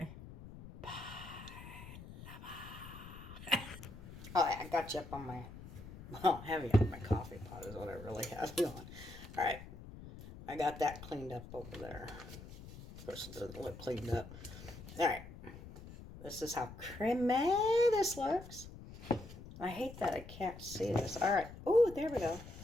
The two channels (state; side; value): noise; left; rumble, 14 dB below the sound